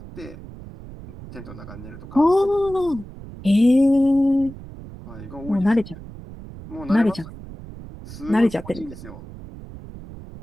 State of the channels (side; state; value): right; noise; rumble, 15 dB below the sound